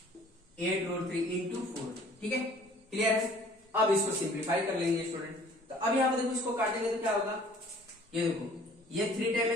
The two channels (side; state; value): both; normal; correlation 0.52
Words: इंटू 4, ठीक है, क्लियर है। अब इसको सिंप्लीफाई कर लेंगे स्टूडेंट, तो अब यहां पर देखो इसको काटेंगे तो क्या होगा, ये देखो ये 3 टाइम